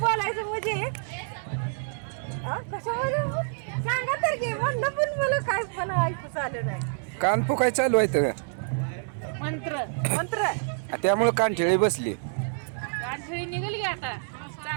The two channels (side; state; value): left; silent; digital silence